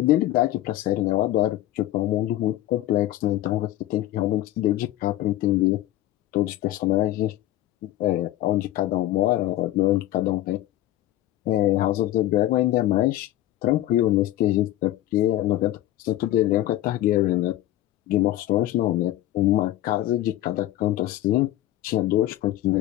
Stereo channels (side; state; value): right; quieter; 14.5 dB